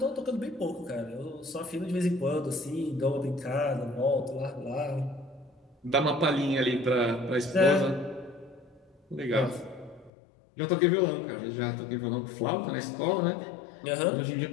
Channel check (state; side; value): drops out; right; at 10.1 s